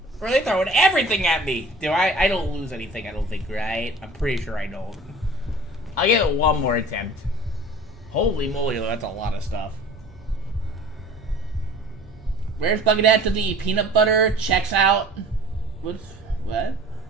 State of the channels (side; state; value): both; normal; correlation 0.45